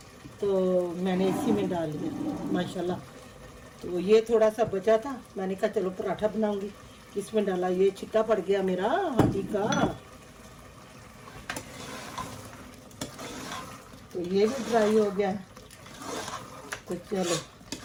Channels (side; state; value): both; identical; correlation 1.00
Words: तो मैंने इसी में डाल लिया माशाल्लाह। तो ये थोड़ा सा बचा था, मैंने कहा चलो पराठा बनाऊंगी, इसमें डाला। ये छिट्टा पड़ गया मेरा हाथी का, तो ये भी ड्राई हो गया। तो